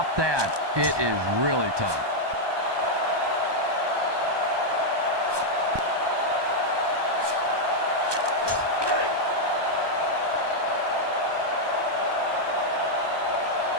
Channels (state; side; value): late; left; 1.2 ms